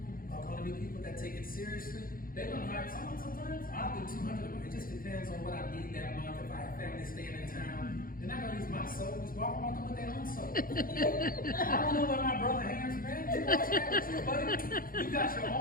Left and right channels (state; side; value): late; right; 0.41 ms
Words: are going to be people that take it seriously. They're going to hire someone sometimes. I'll do 200 of them. It just depends on what I need that month. If I have family staying in town, they're not going to use my soap. Just walk around with their own soap. I don't know what my brother hands, man. You wash that too, buddy. You got your